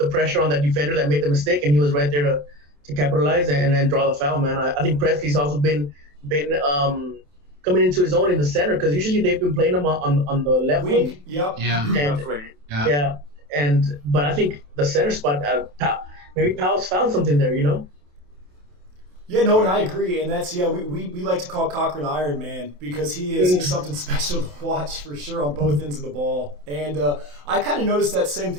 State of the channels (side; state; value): left; late; 27 ms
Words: pressure on that defender that made the mistake, and he was right there to capitalize and then draw the foul. Man, I think Presley's also been coming into his own in the center, because usually they've been playing him on the left wing. Yep. Yeah. But I think the center spot, maybe Powell's found something there. Yeah, no, and I agree, and that's we like to call Cochran Iron Man, because he's something special to watch for sure on both ends of the ball. And I kind of noticed that same